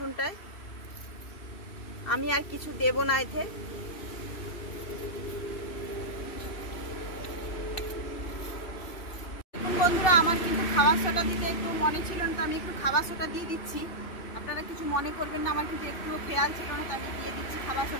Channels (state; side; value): late; right; 2.7 ms